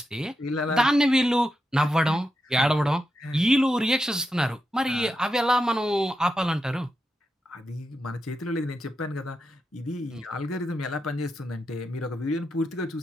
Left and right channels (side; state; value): both; normal; correlation 0.86